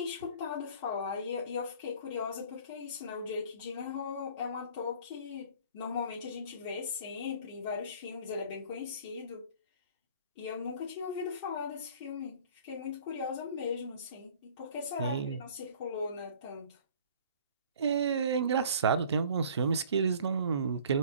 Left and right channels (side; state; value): both; inverted; correlation -0.50